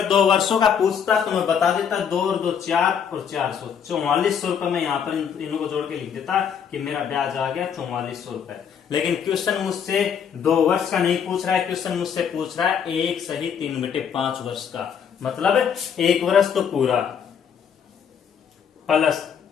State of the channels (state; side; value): quieter; right; 7.6 dB